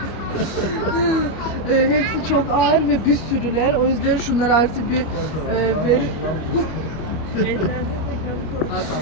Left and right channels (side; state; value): right; late; 25 ms